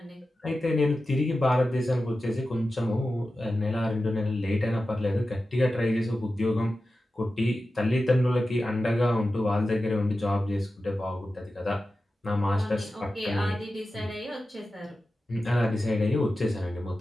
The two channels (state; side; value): normal; both; correlation 0.93